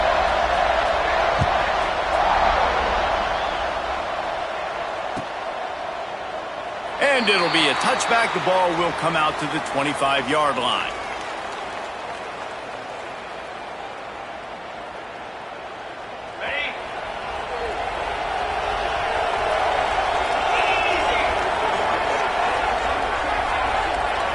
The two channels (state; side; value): identical; both; correlation 1.00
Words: And it'll be a touchback. The ball will come out to the 25-yard line.